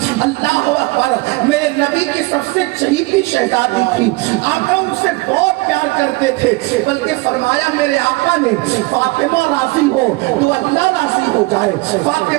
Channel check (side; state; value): left; quieter; 23.3 dB